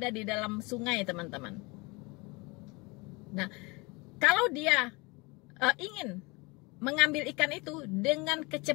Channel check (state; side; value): quieter; right; 26.4 dB